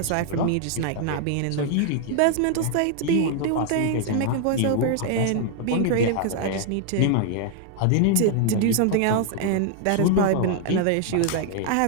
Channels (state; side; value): different; both; correlation 0.00